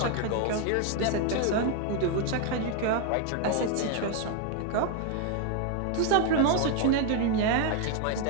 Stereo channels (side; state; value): both; different; correlation 0.01